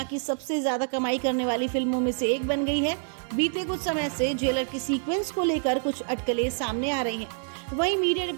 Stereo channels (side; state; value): left; silent; 60 dB below the other